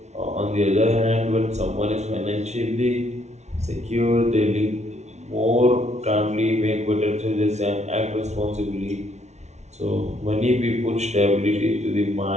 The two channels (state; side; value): late; left; 0.32 ms